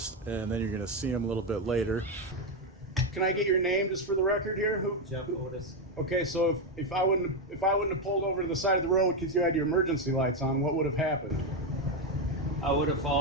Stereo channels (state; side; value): normal; both; correlation 0.07